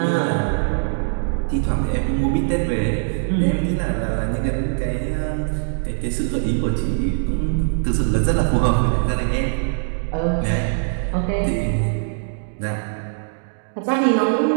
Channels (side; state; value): left; silent; digital silence